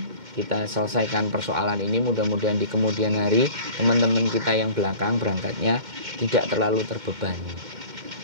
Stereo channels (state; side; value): late; left; 2.1 ms